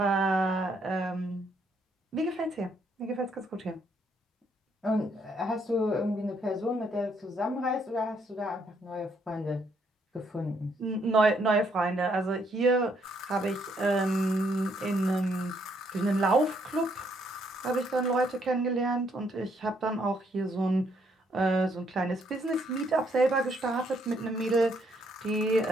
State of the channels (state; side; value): normal; both; correlation 0.71